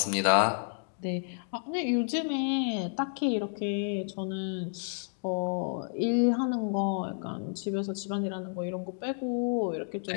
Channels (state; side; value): silent; right; digital silence